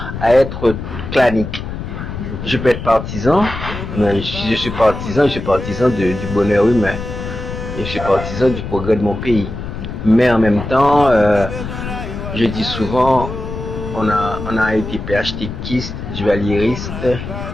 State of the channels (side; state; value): left; noise; rumble, 7 dB below the sound